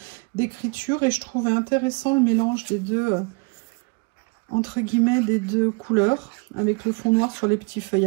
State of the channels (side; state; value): left; quieter; 30.9 dB